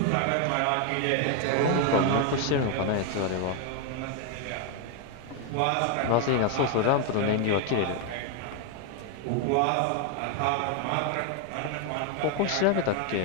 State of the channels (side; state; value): both; different; correlation 0.01